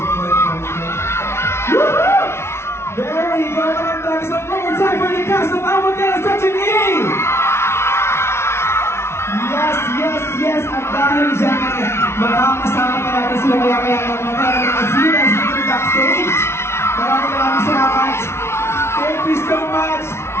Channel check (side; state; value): right; late; 0.12 ms